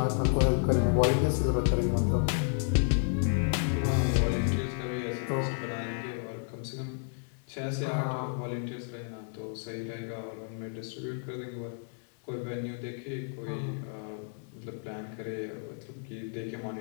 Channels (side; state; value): right; silent; 57 dB below the other